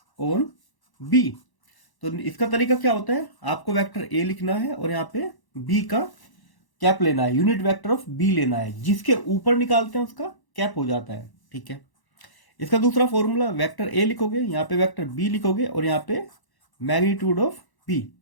on B, तो इसका तरीका क्या होता है, आपको वेक्टर ए लिखना है और यहाँ पे बी का कैप लेना है, यूनिट वेक्टर ऑफ बी लेना है, जिसके ऊपर निकालते हैं उसका कैप हो जाता है। ठीक है, इसका दूसरा फॉर्मूला, वेक्टर ए लिखोगे, यहाँ पे वेक्टर बी लिखोगे और यहाँ पे मैग्नीट्यूड ऑफ बी,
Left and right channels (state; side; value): late; right; 1.0 ms